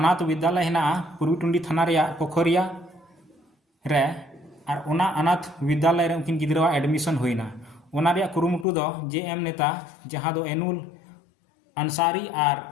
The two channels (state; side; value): drops out; right; at 8.7 s